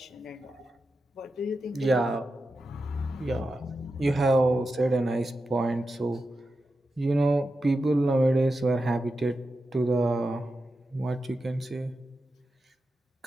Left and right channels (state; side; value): normal; both; correlation 0.90